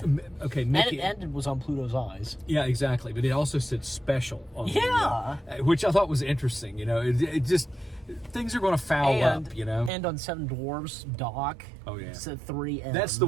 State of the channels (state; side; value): drops out; left; at 9.9 s